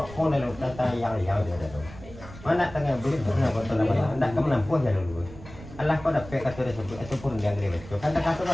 lalu tata yang dia ada tu. Mana tengah beli mana betul nama. Nak kamu nampuh ya dulu. Allah kau dapat kata dia sebut itu pun dia ngeri betul. Kan tak kata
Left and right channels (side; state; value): right; noise; rumble, 16 dB below the sound